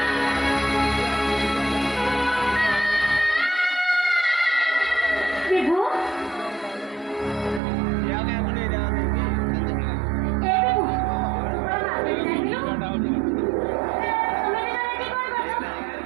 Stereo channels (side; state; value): left; drops out; at 7.6 s